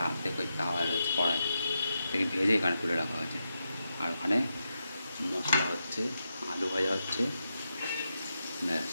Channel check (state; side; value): inverted; both; correlation -0.86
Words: অর্ধেক ওই তাওয়া রয়েছে কড়াই থেকে ভেজে এখানে তুলে রাখা হয়েছে। আর ওখানে মশলা হচ্ছে, আলু ভাজা হচ্ছে, ব্যাস।